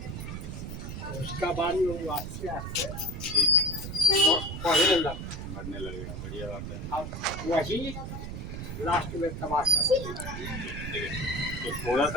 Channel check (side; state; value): right; noise; rumble, 7 dB below the sound